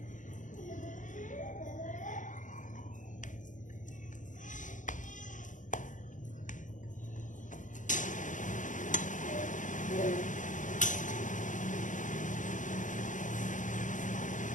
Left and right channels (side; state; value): right; late; 0.37 ms